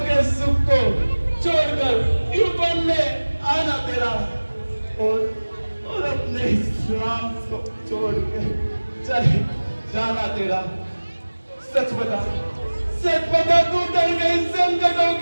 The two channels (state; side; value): inverted; both; correlation -1.00